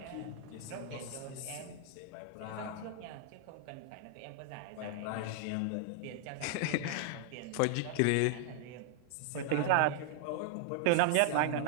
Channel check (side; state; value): both; different; correlation 0.00